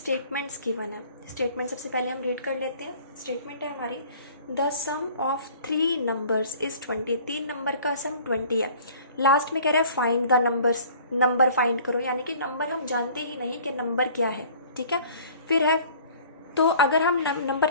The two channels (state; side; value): inverted; both; correlation -0.50